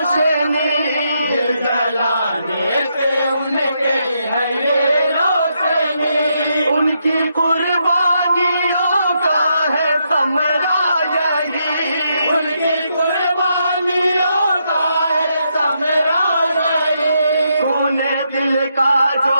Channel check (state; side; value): inverted; both; correlation -0.79